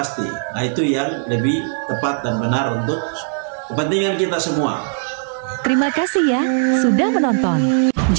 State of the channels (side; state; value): left; silent; digital silence